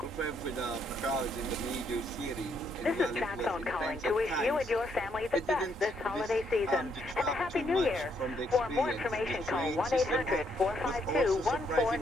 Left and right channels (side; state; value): both; normal; correlation 0.73